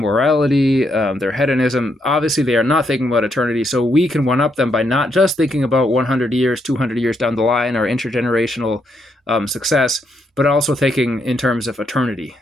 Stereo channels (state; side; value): normal; both; correlation 0.77